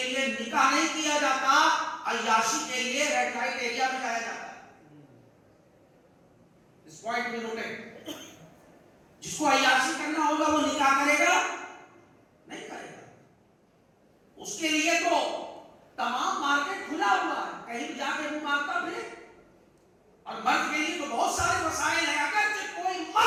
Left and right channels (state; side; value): identical; both; correlation 1.00